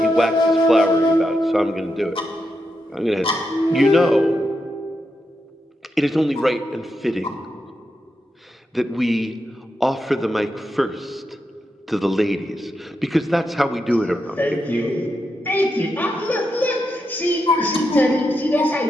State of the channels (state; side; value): normal; both; correlation 0.85